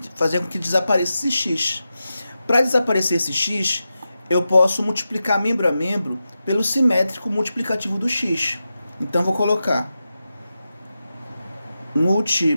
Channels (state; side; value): inverted; both; correlation -0.91